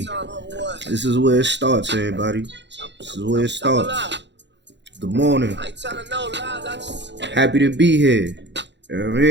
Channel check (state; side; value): late; left; 0.52 ms